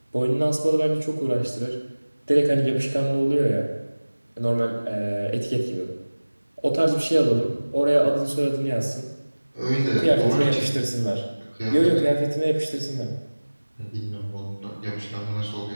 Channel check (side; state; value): both; inverted; correlation -1.00